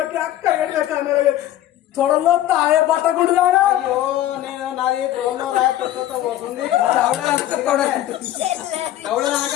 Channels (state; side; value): quieter; right; 13.2 dB